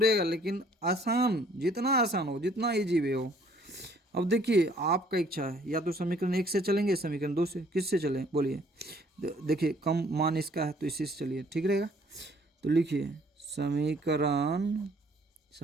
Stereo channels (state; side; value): normal; both; correlation 0.60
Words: लेकिन आसान, जितना आसान हो, जितना ईजी वे हो। अब देखिए आपका इच्छा है, या तो समीकरण 1 से चलेंगे, समीकरण 2 से, किससे चलें बोलिए। देखिए कम मान इसका है तो इसी से चलिए, ठीक रहेगा। तो लिखिए